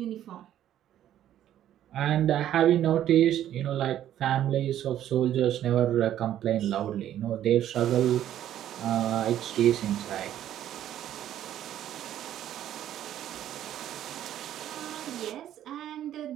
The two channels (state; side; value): quieter; left; 11.5 dB